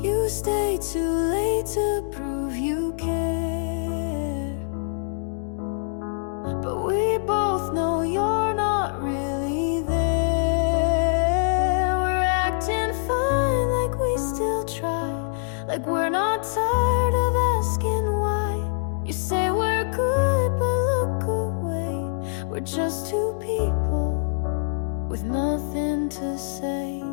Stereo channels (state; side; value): silent; right; digital silence